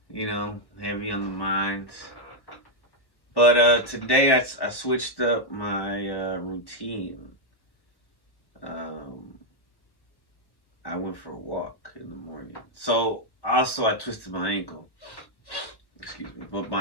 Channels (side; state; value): right; late; 1.1 ms